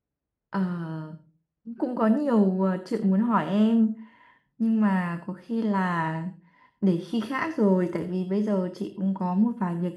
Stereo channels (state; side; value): identical; both; correlation 1.00